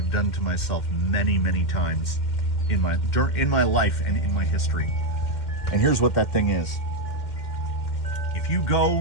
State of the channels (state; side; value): late; right; 2.1 ms